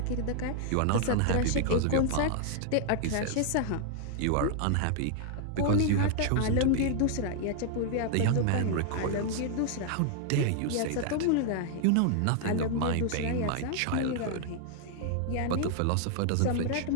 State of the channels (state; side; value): different; both; correlation 0.00